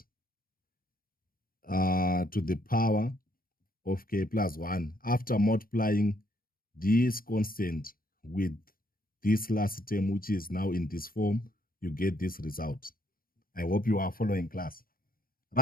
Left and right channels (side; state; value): right; late; 0.42 ms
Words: to the power of k plus 1. After multiplying this constant with this last term, which is now in this form, you get this result. I hope you are following, class.